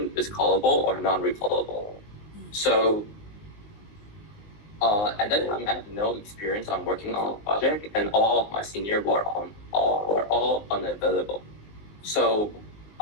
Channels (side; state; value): right; late; 19 ms